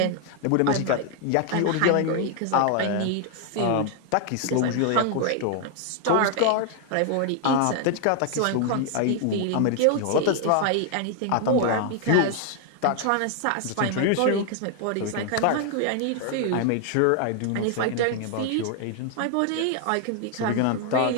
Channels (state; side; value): different; both; correlation 0.00